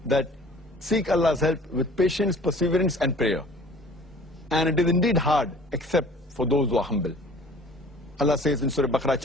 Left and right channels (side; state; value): both; normal; correlation 0.49